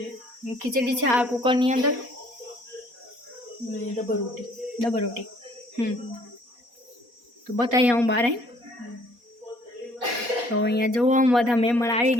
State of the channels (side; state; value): left; late; 4.2 ms